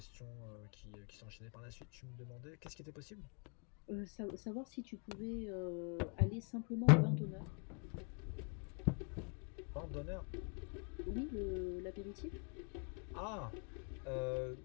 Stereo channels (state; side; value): quieter; right; 36.3 dB